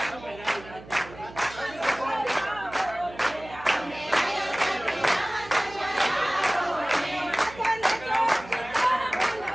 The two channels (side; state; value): right; noise; hum, 17 dB below the sound